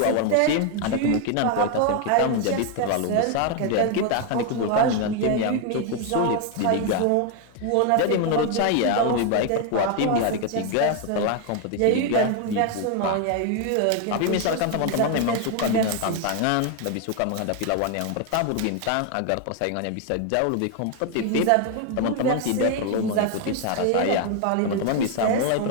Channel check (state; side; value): different; both; correlation 0.01